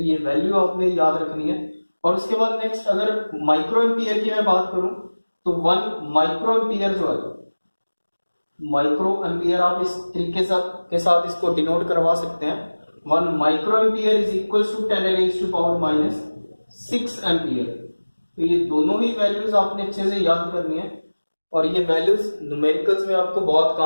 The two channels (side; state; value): both; inverted; correlation -1.00